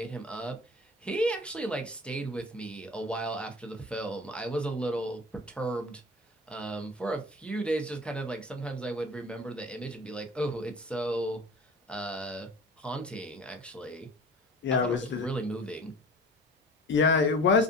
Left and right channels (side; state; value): both; normal; correlation 0.40